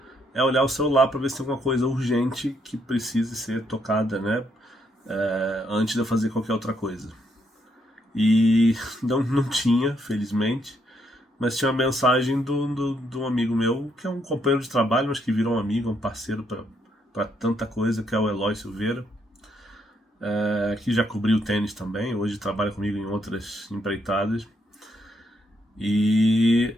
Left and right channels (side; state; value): both; normal; correlation 0.75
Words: é olhar o celular para ver se tem alguma coisa urgente que precise ser tocada, né? Antes de eu fazer qualquer outra coisa. E não tinha, felizmente, mas tinha uma mensagem de um amigo meu, que é um companheiro de trabalho, mas que virou um amigo, um parceiro para tanta coisa, que é o Eloy Silveira, que já cobriu tênis também, hoje trabalha comigo em outras empreitadas. E